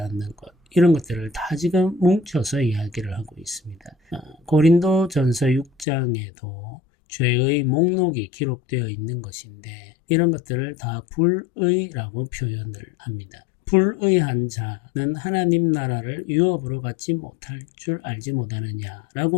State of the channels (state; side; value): drops out; right; at 5.9 s